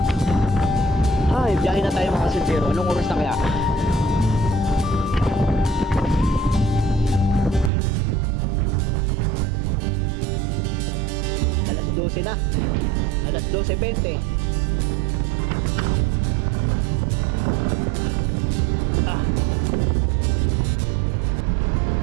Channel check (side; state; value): left; drops out; at 7.7 s